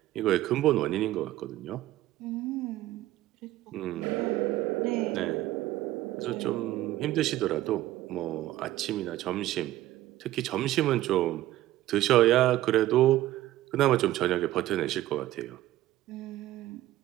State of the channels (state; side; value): quieter; left; 15.0 dB